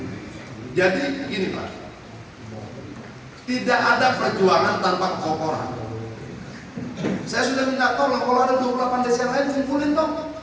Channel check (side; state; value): both; identical; correlation 1.00